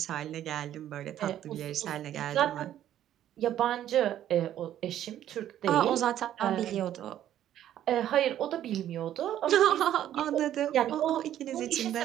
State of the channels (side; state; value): left; quieter; 11.6 dB